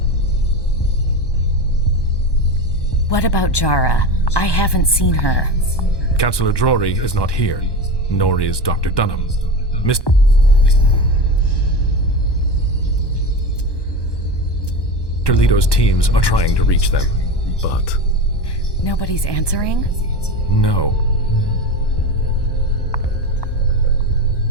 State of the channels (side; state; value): right; late; 1.1 ms